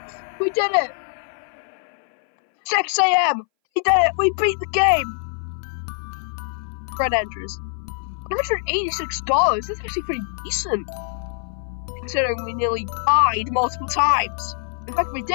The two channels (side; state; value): right; silent; 61 dB below the other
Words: We did it! 6 AM! We did it! We beat the game! Fred Andrews. $186. That's actually pretty decent. Considering we nearly died multiple times. In fact, we